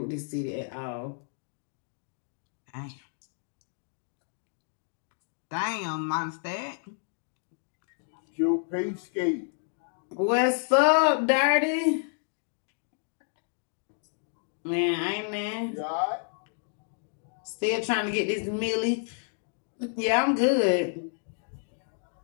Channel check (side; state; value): right; silent; 57 dB below the other